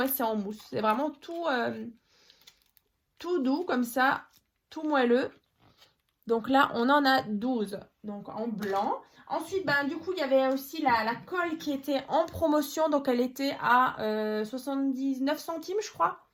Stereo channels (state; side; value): identical; both; correlation 1.00